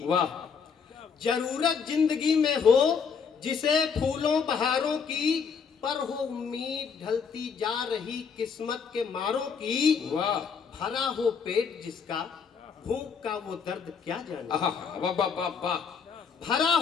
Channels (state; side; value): quieter; right; 6.2 dB